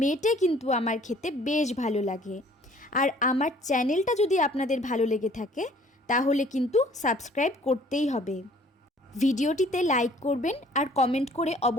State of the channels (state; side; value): normal; both; correlation 0.55